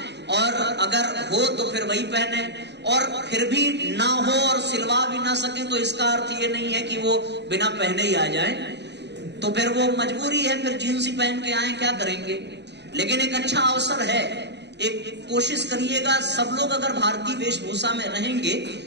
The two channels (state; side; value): late; left; 0.50 ms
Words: और अगर हो तो फिर वही पहने, और फिर भी ना हो और सिलवा भी ना सके तो इसका अर्थ ये नहीं है कि वो बिना पहने ही आ जाए। तो फिर वो मजबूरी है, फिर जींस ही पहन के आए, क्या करेंगे। लेकिन एक अच्छा अवसर है, एक कोशिश करिएगा, सब लोग अगर भारतीय वेशभूषा में रहेंगे